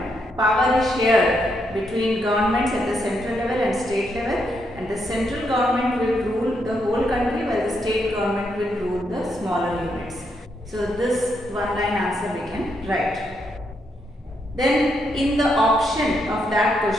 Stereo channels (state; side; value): normal; both; correlation 0.79